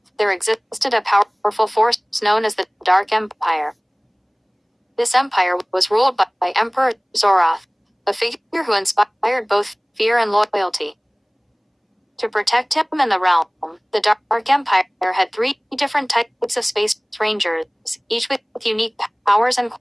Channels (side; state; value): both; identical; correlation 1.00